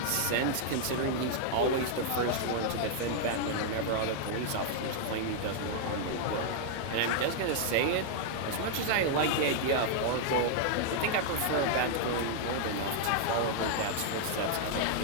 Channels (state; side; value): different; both; correlation 0.00